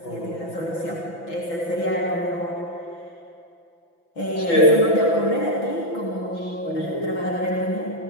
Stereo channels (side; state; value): right; late; 6.0 ms